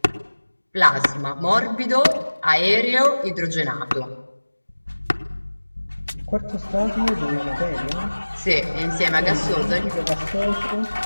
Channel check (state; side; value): inverted; both; correlation -1.00